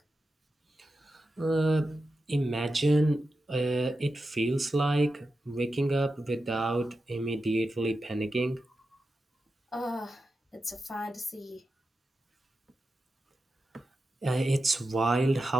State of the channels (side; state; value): both; normal; correlation 0.90